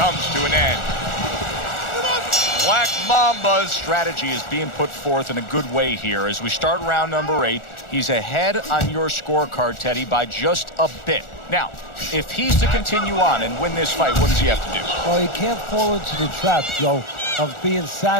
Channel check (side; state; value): right; late; 1.4 ms